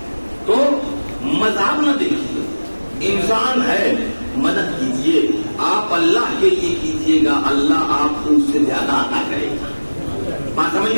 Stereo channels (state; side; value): inverted; both; correlation -1.00